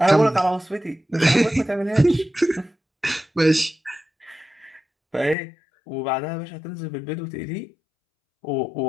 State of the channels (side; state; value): right; drops out; at 5.4 s